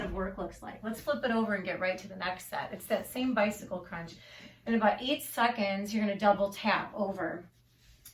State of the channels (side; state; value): both; identical; correlation 1.00